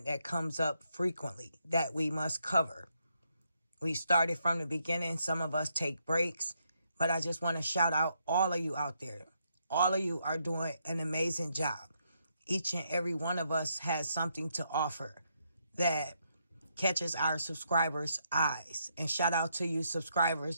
that comes up frequently that we must cover. We started from the beginning. Some of us take breaks, but I just want to shout out all of you out there. All of you are doing an amazing job. Each and every one of us has something to offer that catches our subscribers' eyes. And shout out to you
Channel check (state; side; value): inverted; both; correlation -0.77